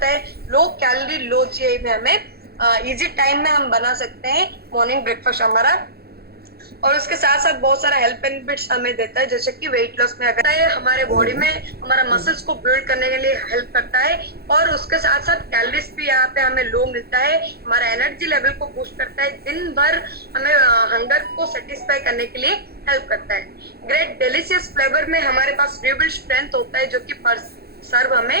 है। लो कैलोरी, लो जीआई में हमें इजी टाइम में हम बना सकते हैं मॉर्निंग ब्रेकफास्ट हमारा। और उसके साथ साथ बहुत सारा हेल्थ बेनिफिट्स हमें देता है, जैसे कि वेट लॉस में अगर हमारे बॉडी में हमारा मसल्स को बिल्ड करने के लिए हेल्प करता है, और उसके साथ साथ कैलोरीज भी यहाँ पे हमें लो मिलता है, हमारा एनर्जी लेवल को बूस्ट करता है, दिन भर हमें हंगर को सेटिस्फाई करने के लिए हेल्प करता है। ग्रेट डिलीशियस फ्लेवर में हमारे पास रिबिल्ड स्ट्रेंथ होता है, जो कि पर सर्व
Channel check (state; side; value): late; left; 0.46 ms